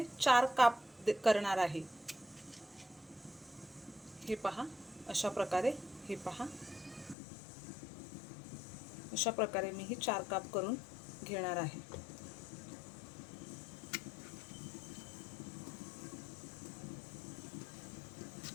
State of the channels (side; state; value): right; drops out; at 7.2 s